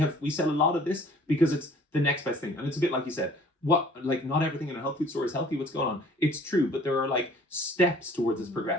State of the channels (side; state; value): both; normal; correlation 0.53